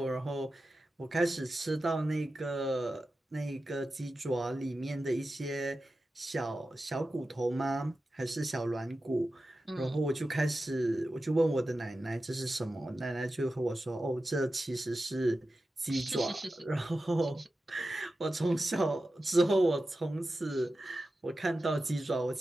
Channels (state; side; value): normal; both; correlation 0.93